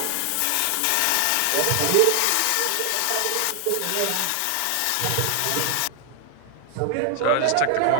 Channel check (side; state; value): both; different; correlation 0.00